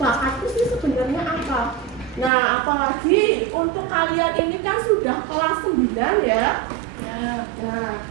sih sebenarnya apa. Nah, apalagi untuk kalian ini kan sudah kelas 9 ya. Nah,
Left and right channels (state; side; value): drops out; left; at 2.3 s